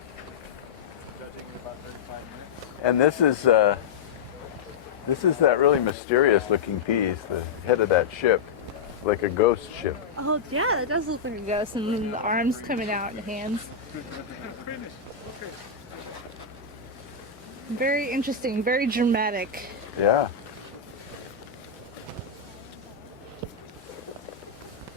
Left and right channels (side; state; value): right; quieter; 5.7 dB